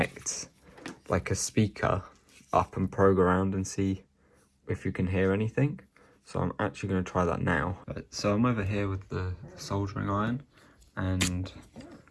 like a speaker up and probe around and see if you can hear anything. So I'm actually going to try that now. So I'm over here with the soldering iron. And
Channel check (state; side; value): identical; both; correlation 1.00